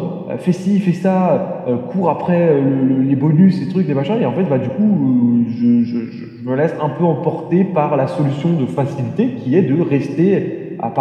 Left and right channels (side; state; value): both; identical; correlation 1.00